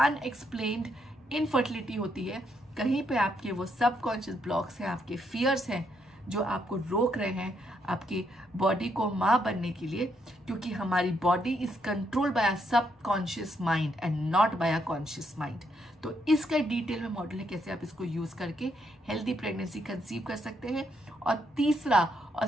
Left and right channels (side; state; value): both; normal; correlation 0.76